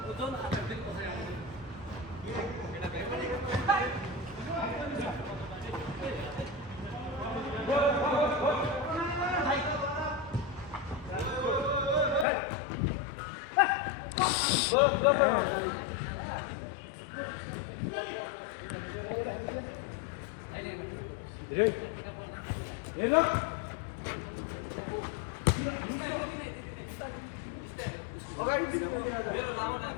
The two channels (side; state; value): right; drops out; at 12.2 s